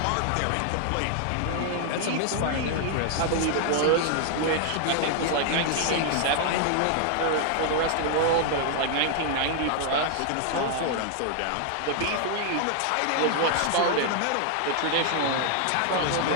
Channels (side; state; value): both; different; correlation 0.00